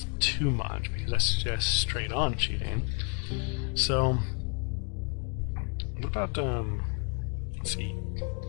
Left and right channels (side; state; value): right; quieter; 36.9 dB